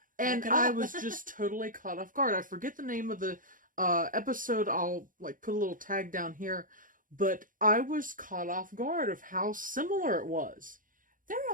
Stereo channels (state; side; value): late; left; 0.39 ms